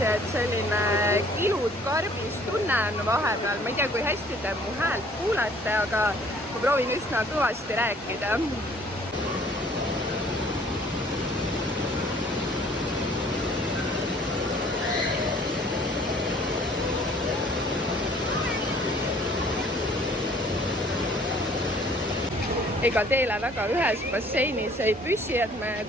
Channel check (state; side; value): normal; both; correlation 0.56